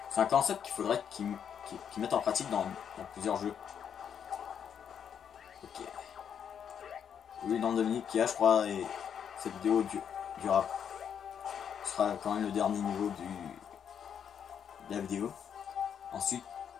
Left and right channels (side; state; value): right; quieter; 8.1 dB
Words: C'est un concept qu'il faudrait qu'ils mettent en pratique dans plusieurs jeux. Ok. Oui, dans Dominique qui a, je crois, et cette vidéo durera. Ce sera quand même le dernier niveau de la vidéo. Ensuite,